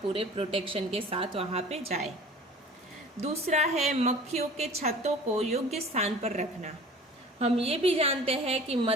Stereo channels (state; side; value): normal; both; correlation 0.44